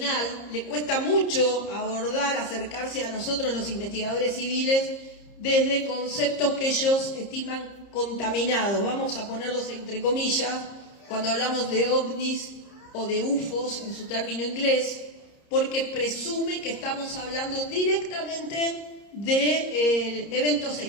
le cuesta mucho abordar, acercarse a nosotros los investigadores civiles desde conceptos que ellos estiman contaminados. Vamos a ponerlos entre comillas cuando hablamos de ovnis o de UFOs en su término inglés, porque presume que estamos hablando directamente de eventos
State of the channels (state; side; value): late; right; 30 ms